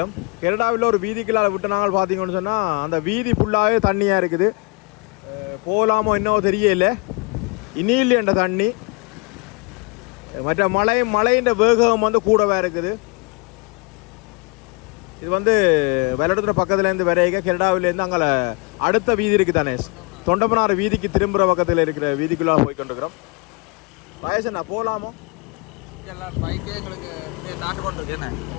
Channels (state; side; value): quieter; right; 30.0 dB